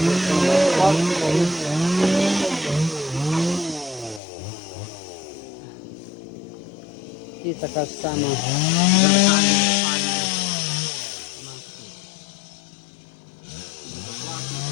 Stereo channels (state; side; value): drops out; right; at 4.2 s